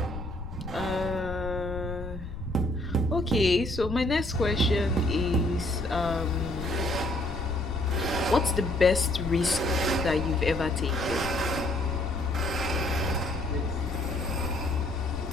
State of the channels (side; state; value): left; noise; rumble, 9 dB below the sound